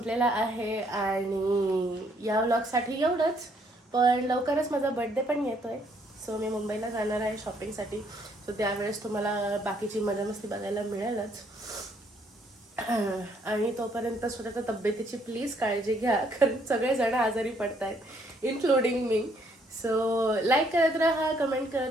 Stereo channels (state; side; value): normal; both; correlation 0.68